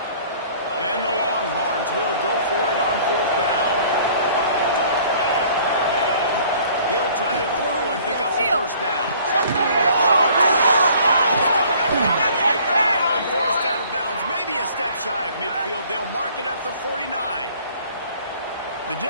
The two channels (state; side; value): inverted; both; correlation -0.54